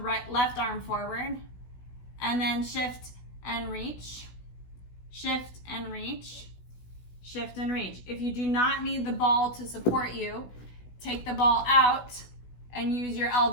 left arm forward. And then shift and reach, shift and reach, shift and reach. If you do not need the ball to support you, take the ball out and use your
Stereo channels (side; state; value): right; late; 16 ms